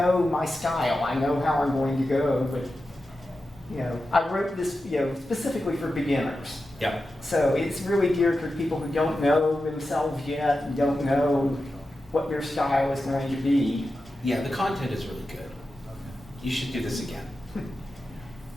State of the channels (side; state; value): both; normal; correlation 0.91